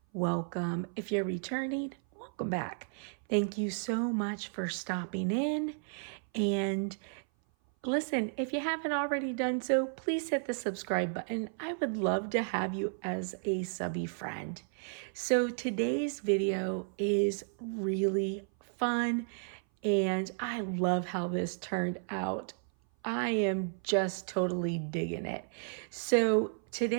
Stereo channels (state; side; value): silent; left; 56 dB below the other